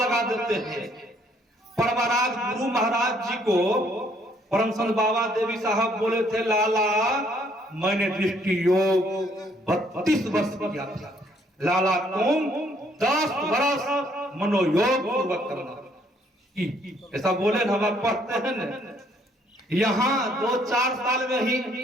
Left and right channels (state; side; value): normal; both; correlation 0.66